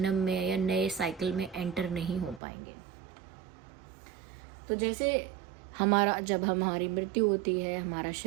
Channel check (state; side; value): drops out; left; at 2.4 s